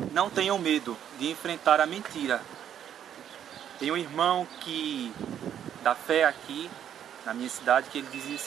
não tenham medo de enfrentar a mentira. Tem um irmão da fé aqui na minha cidade que ele dizia o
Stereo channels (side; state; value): left; quieter; 9.7 dB